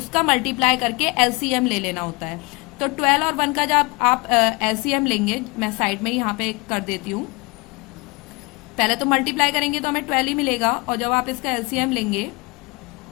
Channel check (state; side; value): quieter; right; 26.2 dB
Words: मल्टीप्लाई करके एलसीएम ले लेना होता है। तो 12 और 1 का जब आप एलसीएम लेंगे, मैं साइड में यहाँ पे कर देती हूँ, पहले तो मल्टीप्लाई करेंगे तो हमें 12 ही मिलेगा, और जब आप इसका एलसीएम लेंगे